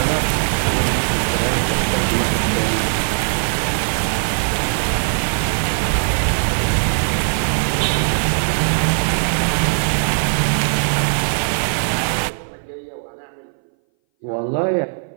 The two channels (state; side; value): silent; left; 60 dB below the other